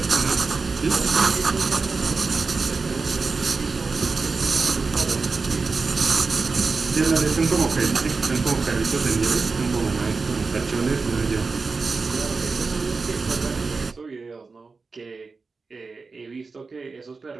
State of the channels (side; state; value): left; quieter; 4.3 dB